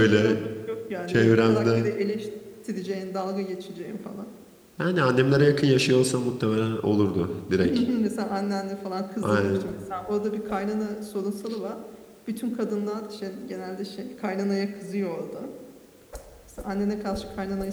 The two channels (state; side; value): identical; both; correlation 1.00